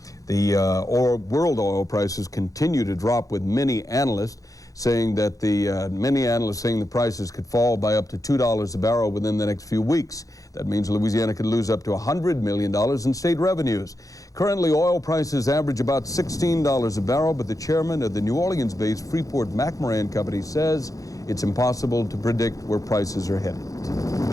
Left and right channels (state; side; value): late; right; 0.17 ms